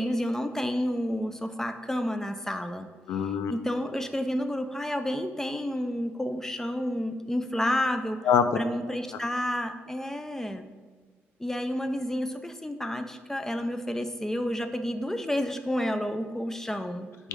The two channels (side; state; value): both; normal; correlation 0.84